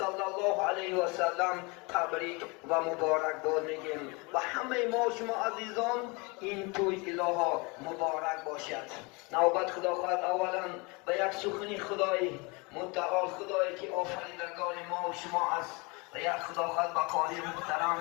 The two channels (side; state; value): right; quieter; 28.4 dB